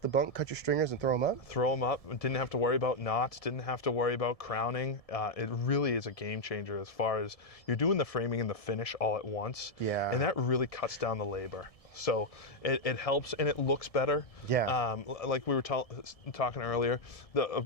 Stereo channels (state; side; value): late; right; 1.7 ms